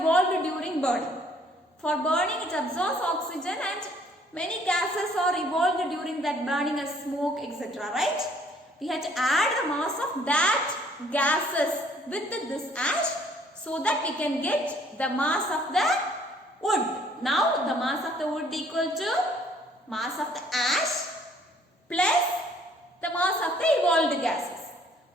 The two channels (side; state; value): both; normal; correlation 0.60